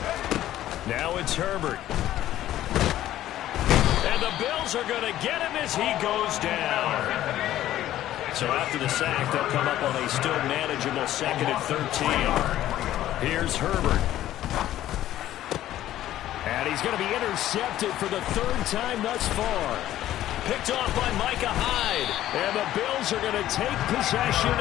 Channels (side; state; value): right; quieter; 13.3 dB